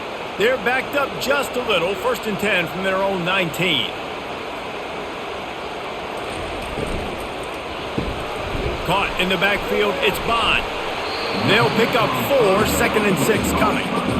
They're backed up just a little. 1st and 10 from their own 19. Caught in the backfield, it's Bond. They'll pick up 4, 2nd and 6 coming.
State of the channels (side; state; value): both; identical; correlation 1.00